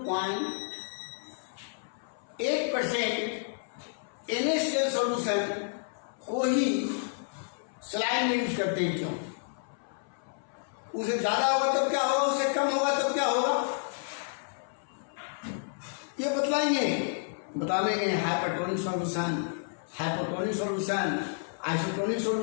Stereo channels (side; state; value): right; silent; 58 dB below the other